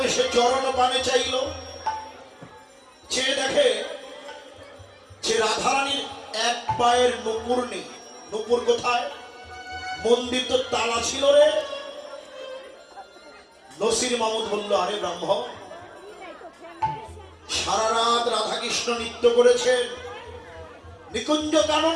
সে চরণ পানে চাইল, চেয়ে দেখে যে রাধারানীর এক পায়ের নুপুর নেই। নুপুর কোথায়? মন্দির তো তালা ছিল রে। নসির মামুদ বলল, আরে ব্রাহ্মণ সারা রাত রাধাকৃষ্ণ নৃত্য করেছেন নিকুঞ্জ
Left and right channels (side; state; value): both; identical; correlation 1.00